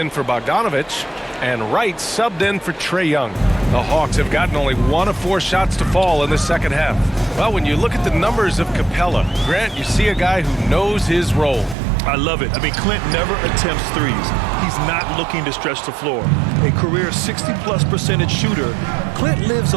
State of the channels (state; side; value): drops out; left; at 11.8 s